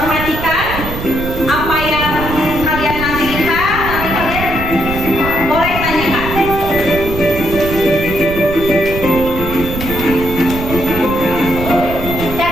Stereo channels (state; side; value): noise; right; rumble, 7 dB below the sound